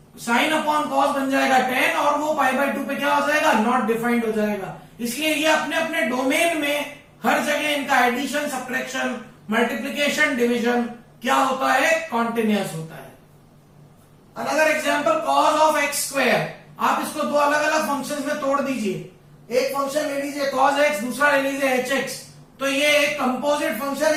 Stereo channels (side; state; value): both; identical; correlation 1.00